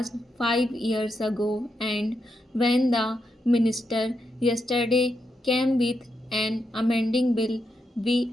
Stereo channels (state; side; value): normal; both; correlation 0.84